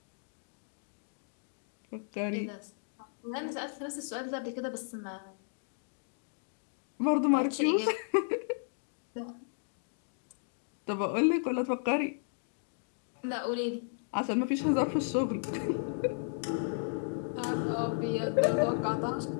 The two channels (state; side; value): silent; right; digital silence